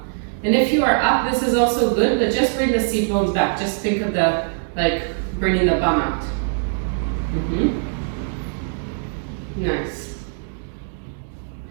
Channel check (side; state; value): left; silent; digital silence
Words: And if you are up, this is also good, but just bring the seat bones back. Just think of the, like, bringing the bum out. Nice.